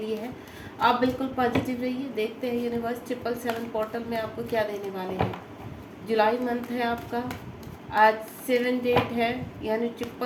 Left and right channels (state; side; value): identical; both; correlation 1.00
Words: है। आप बिल्कुल पॉजिटिव रहिए। देखते हैं यूनिवर्स 777 पोर्टल में आपको क्या देने वाले हैं। जुलाई मंथ है आपका, आज 7 डेट है, यानी